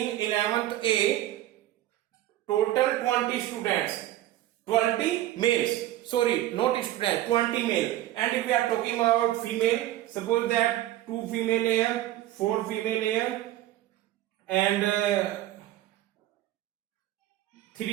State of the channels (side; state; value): left; quieter; 14.4 dB